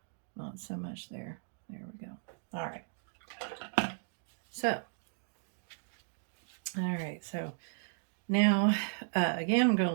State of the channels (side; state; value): left; silent; digital silence